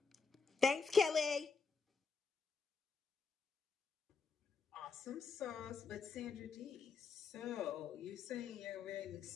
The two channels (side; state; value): right; quieter; 5.1 dB